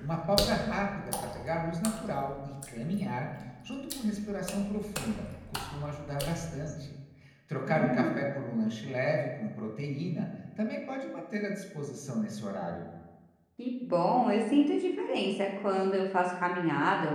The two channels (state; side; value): identical; both; correlation 1.00